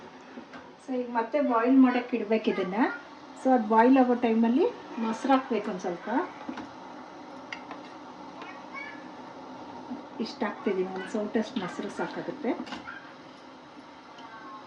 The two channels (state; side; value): identical; both; correlation 1.00